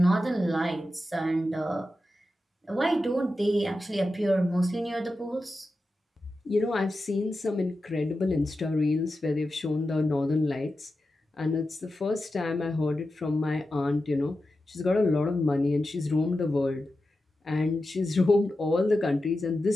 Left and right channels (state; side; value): normal; both; correlation 0.91